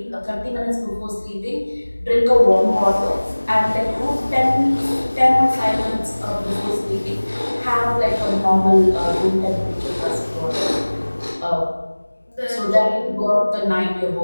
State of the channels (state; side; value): inverted; both; correlation -1.00